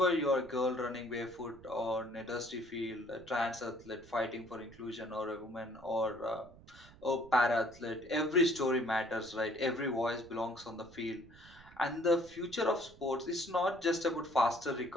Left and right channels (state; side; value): noise; right; rumble, 22 dB below the sound